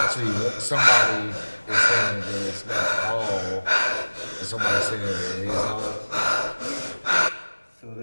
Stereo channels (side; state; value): both; inverted; correlation -1.00